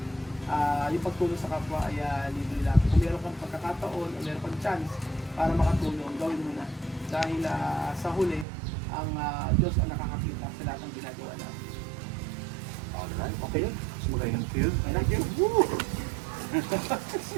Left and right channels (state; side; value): drops out; left; at 8.5 s